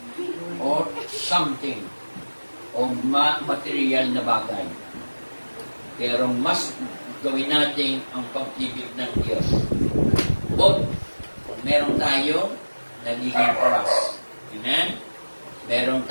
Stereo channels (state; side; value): inverted; both; correlation -1.00